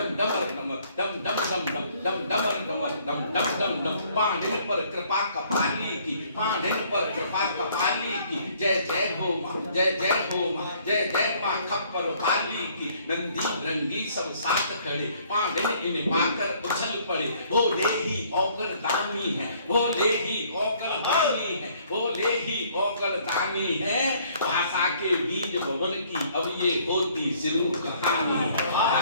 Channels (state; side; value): inverted; both; correlation -0.61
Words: डमर डमर डम डम डम डम डम डमर डमर डम डम डम डम। पांडिन पर कृपा कपाली की, पांडिन पर कृपा कपाली की, जय जय हो माँ, जय जय हो माँ, जय जय माँ खप्पर वाली की। नंदी रंगी सब साथ खड़े, पांडिन इन्हें पाकर उछल पड़े। भोले ही औकर दानी है, भोले ही औकर दानी है, भोले ही औकर दानी है। भाषा के बीज भवन की अब ये होती शुरू कहानी,